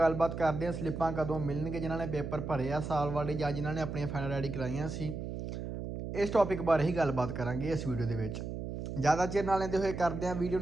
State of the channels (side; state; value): right; noise; hum, 6 dB below the sound